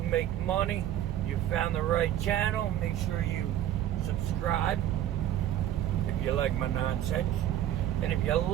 make money, you found the right channel. Make sure you subscribe if you like my nonsense. And if you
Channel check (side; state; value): left; quieter; 11.9 dB